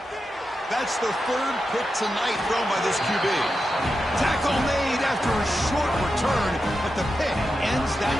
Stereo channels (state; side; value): normal; both; correlation 0.89